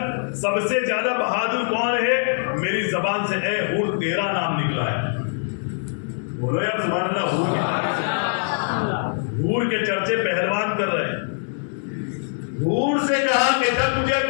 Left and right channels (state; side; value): silent; right; 63 dB below the other